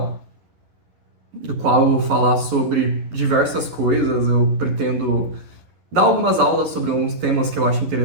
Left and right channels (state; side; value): late; left; 11 ms